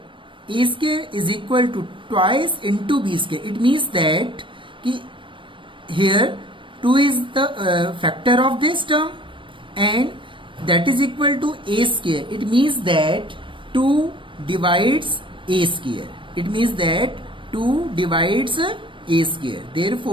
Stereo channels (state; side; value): late; left; 0.25 ms